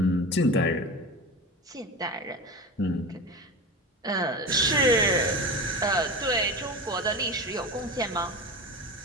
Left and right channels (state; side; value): normal; both; correlation 0.27